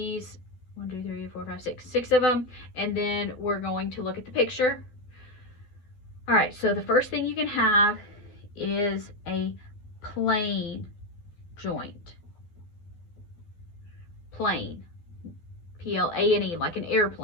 1, 2, 3, 4, 5, 6 of them, and then we're going to look at the picture. All right, so the first thing you can have is a plane joint. Plane, P-L-A-N-E, like an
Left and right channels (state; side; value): late; right; 12 ms